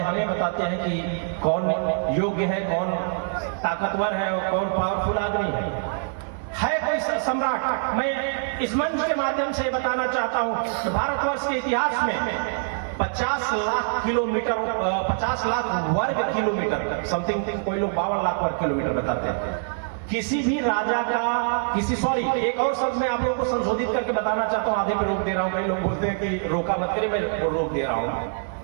बताते हैं कि कौन योग्य है, कौन ताकतवर है और कौन पावरफुल आदमी है कोई सम्राट। मैं इस मंच के माध्यम से बताना चाहता हूं कि भारतवर्ष के इतिहास में 50 लाख किलोमीटर, 50 लाख वर्ग किलोमीटर समथिंग, कोई लोग 52 लाख वर्ग किलोमीटर बताते हैं। किसी भी राजा का एक और शब्द मैं आप लोगों को संशोधित करके बताना चाहता हूं, आधे में रोक दे रहा हूं, कई लोग बोलते हैं कि रोका मत करिए, मैं रोक दे रहा हूं।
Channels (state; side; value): silent; left; digital silence